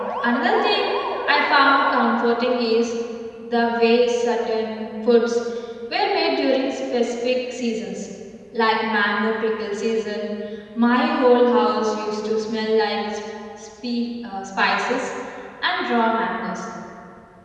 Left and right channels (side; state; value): both; identical; correlation 1.00